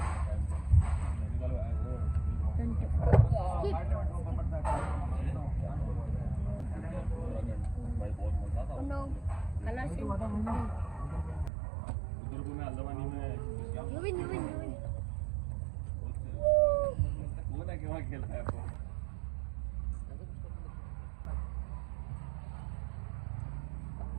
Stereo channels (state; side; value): drops out; left; at 11.5 s